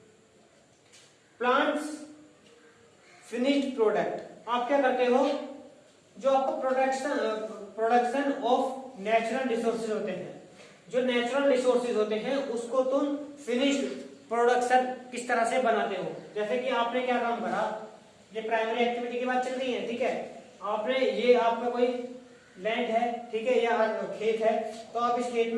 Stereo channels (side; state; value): both; identical; correlation 1.00